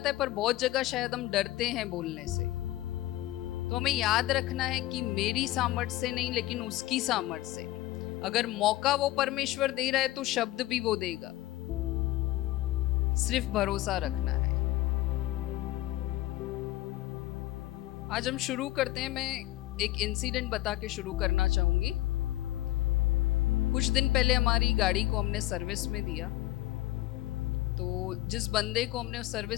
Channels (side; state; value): right; quieter; 16.5 dB